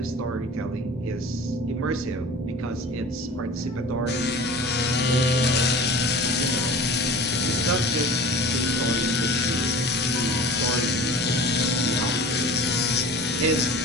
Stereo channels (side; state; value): both; normal; correlation 0.39